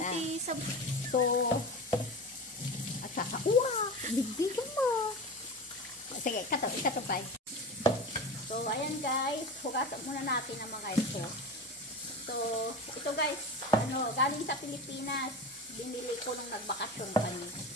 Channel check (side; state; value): both; normal; correlation 0.28